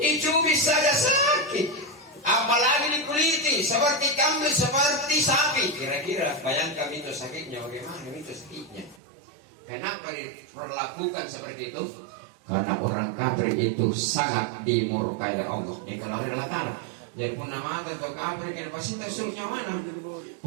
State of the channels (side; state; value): left; drops out; at 9.0 s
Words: Dicubit saja sakit. Apalagi dikuliti seperti kambing seperti sapi. Kira-kira bayangkan itu sakitnya bagaimana itu sakitnya. Kenapa diperlakukan seperti itu? Karena orang kafir itu sangat dimurkai oleh Allah. Ini kalau relatan. Jadi pun nama atau kafir kan pasti surnya mana?